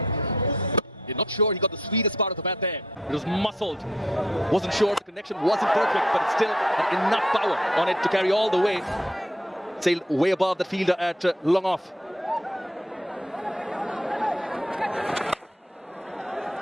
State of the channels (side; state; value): both; normal; correlation 0.69